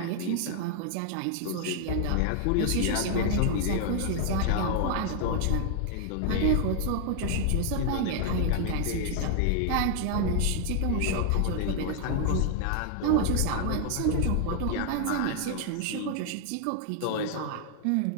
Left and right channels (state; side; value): different; both; correlation 0.00